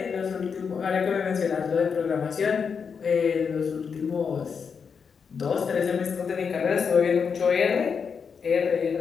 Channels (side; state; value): right; quieter; 6.1 dB